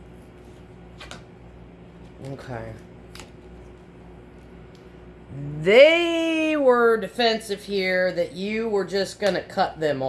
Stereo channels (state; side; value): identical; both; correlation 1.00